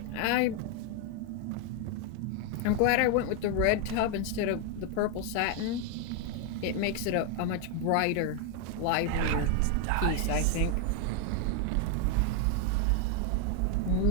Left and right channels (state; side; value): different; both; correlation 0.01